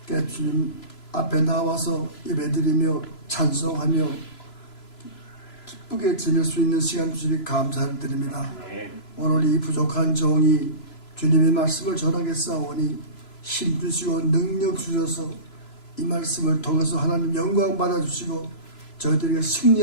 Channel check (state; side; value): late; right; 3.0 ms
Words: 주님 앞에 나와서 예배드리며 찬송하며 기쁘게 지낼 수 있는 시간 주시니 감사를 드립니다. 오늘 이 부족한 종이 주님의 말씀을 전하겠사오니 힘주시고 능력 주셔서 이 말씀을 통해서 하나님 영광 받아주시고 저희들에게